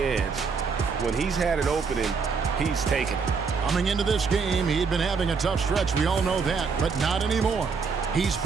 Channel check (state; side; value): quieter; left; 5.2 dB